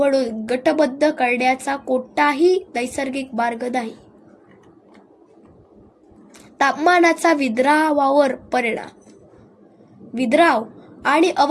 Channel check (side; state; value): both; identical; correlation 1.00